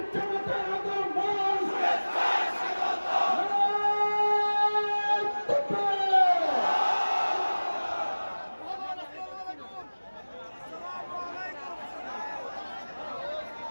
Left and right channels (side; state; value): both; inverted; correlation -1.00